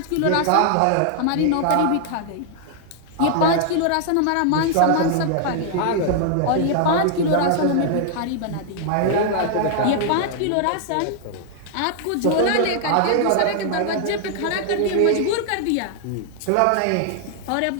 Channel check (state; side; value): different; both; correlation 0.00